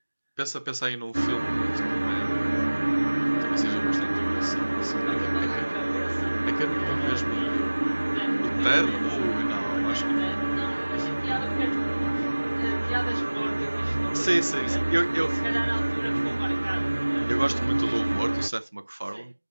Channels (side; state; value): both; inverted; correlation -1.00